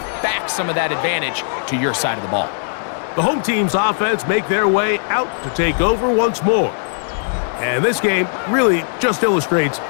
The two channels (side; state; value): right; silent; 63 dB below the other